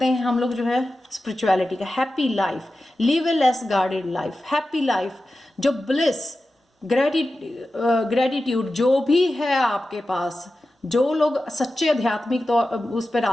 हैं हम लोग जो है स्पिरिचुअलिटी का, हैप्पी लाइफ, लिव ए less guarded life. Happy life, जो ब्लिस, ग्रेटिट्यूड जो भी है आपके पास, जो लोग सच्चे आध्यात्मिक तो उस पे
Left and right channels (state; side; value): normal; both; correlation 0.93